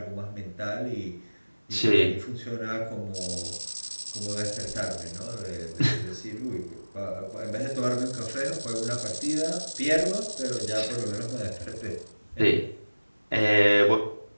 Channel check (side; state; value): both; inverted; correlation -1.00